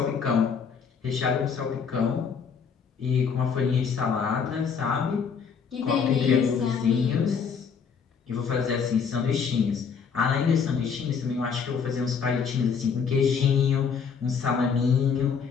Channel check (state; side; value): quieter; right; 6.3 dB